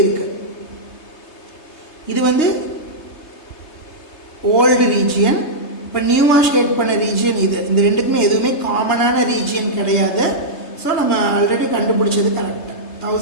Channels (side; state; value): right; late; 3.3 ms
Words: இருக்குது, இது வந்து ஓல்டு ரீஜியன், இப்போ நியூவாக ஷேட் பண்ண ரீஜியன் இது. இந்த ரெண்டுக்குமே எதுவுமே காமனான ரீஜியன் கிடையாது. ஸோ நம்ம ஆல்ரெடி கண்டுபிடிச்சது கரெக்டாக